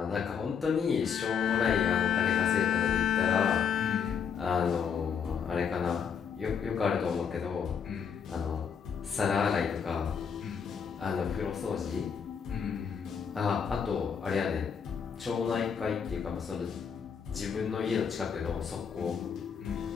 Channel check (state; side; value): quieter; right; 6.9 dB